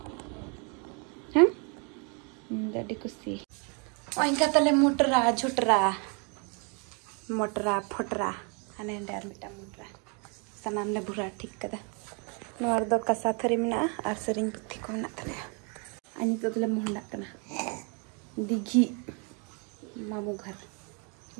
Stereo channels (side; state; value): left; quieter; 35.3 dB